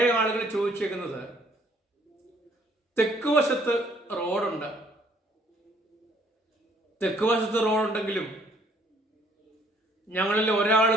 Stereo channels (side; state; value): both; normal; correlation 0.62